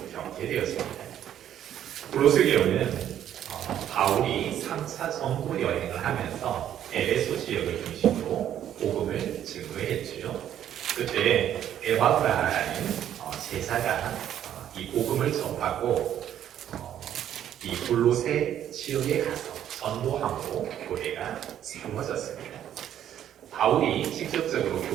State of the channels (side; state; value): left; quieter; 10.7 dB